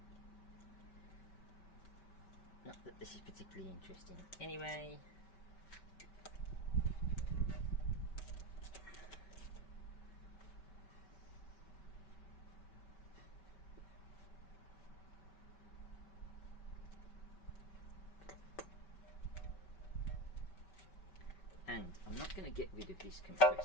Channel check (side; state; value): right; late; 5.2 ms